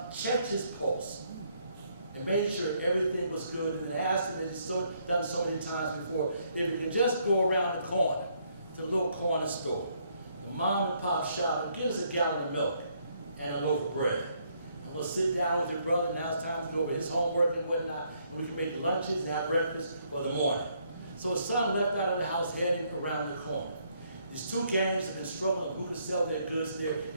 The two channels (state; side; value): inverted; both; correlation -0.70